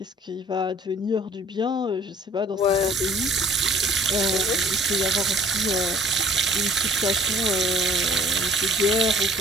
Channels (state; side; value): normal; both; correlation 0.53